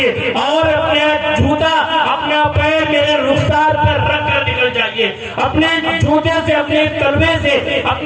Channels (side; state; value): both; identical; correlation 1.00